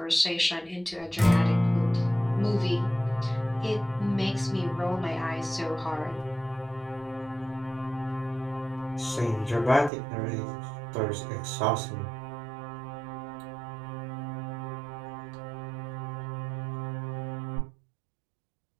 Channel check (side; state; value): left; drops out; at 9.9 s